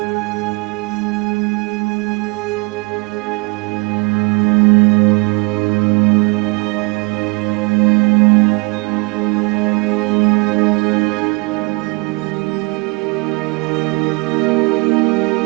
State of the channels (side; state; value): left; quieter; 28.4 dB